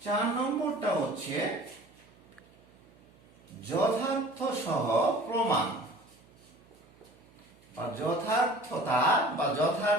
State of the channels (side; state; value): right; noise; hum, 28 dB below the sound